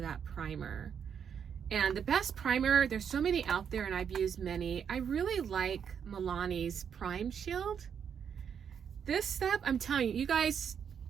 that primer. And the best primer, there's so many out there and I've used many. I really like Milani's Prime Shield. This stuff, I'm telling you, you guys,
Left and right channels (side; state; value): left; quieter; 7.6 dB